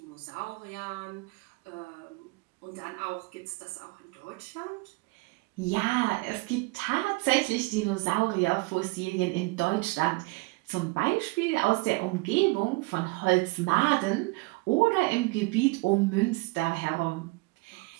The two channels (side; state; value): left; quieter; 24.8 dB